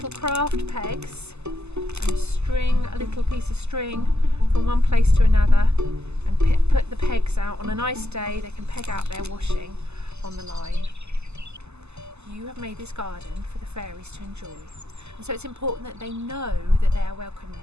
craft pegs and string a little piece of string from one place to another and put the pegs out. On a nice day they can peg out their washing on the line. You have made this garden for the fairies to enjoy, and so it's important that they know that they are welcome in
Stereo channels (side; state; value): left; late; 0.80 ms